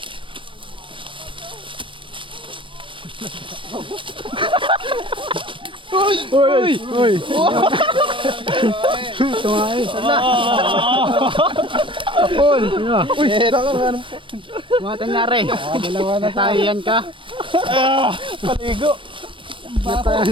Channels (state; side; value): late; left; 0.25 ms